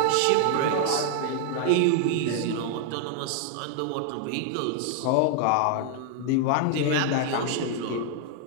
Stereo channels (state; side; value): different; both; correlation 0.00